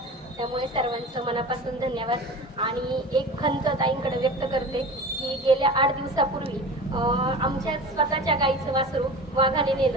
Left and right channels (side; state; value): both; normal; correlation 0.35